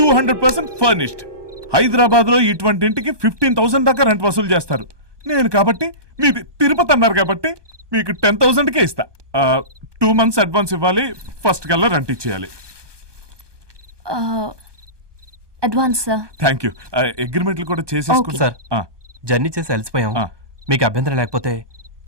furnished. Hyderabad లో ఇటువంటి ఇంటికి 15,000 దాకా రెంట్ వసూలు చేస్తారు. నేను కాబట్టి మీది తిరుపతి అన్నారు కాబట్టి మీకు 10,000కే ఇస్తా. 2 months అడ్వాన్స్ ఇవ్వాలి, ఫస్ట్ కల్లా రెంట్ ఇచ్చేయాలి. Advance sir. Thank you. అగ్రిమెంట్లు కూడా చేసేసుకుంటా సార్. జర్నీ చేసి అలసిపోయాం. మీకు అభ్యంతరం లేకపోతే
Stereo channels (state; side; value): late; left; 1.2 ms